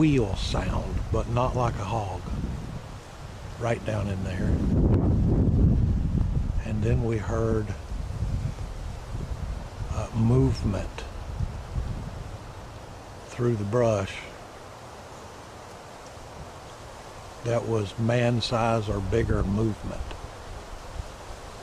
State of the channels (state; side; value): identical; both; correlation 1.00